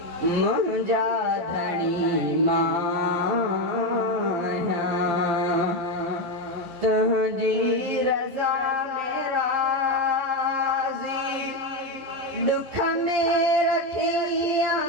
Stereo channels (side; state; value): left; late; 11 ms